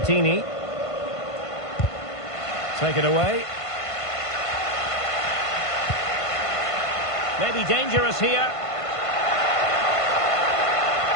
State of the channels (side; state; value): right; late; 1.5 ms